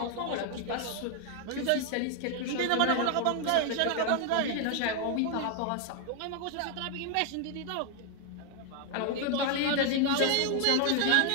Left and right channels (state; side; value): different; both; correlation 0.00